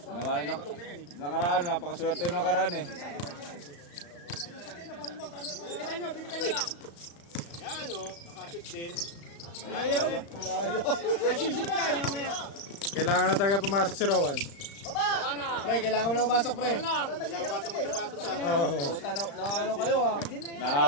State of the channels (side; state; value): right; late; 35 ms